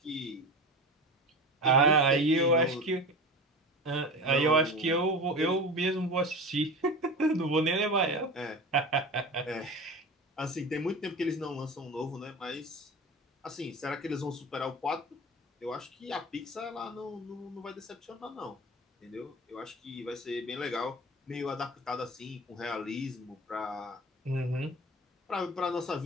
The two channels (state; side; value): normal; both; correlation 0.31